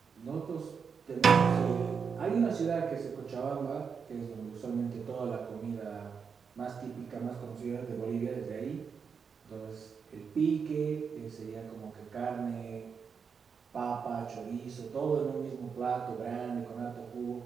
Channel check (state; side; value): quieter; left; 6.1 dB